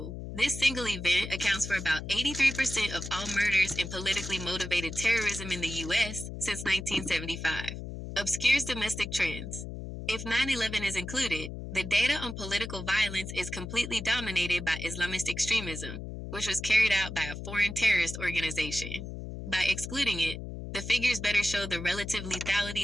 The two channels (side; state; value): left; noise; hum, 8 dB below the sound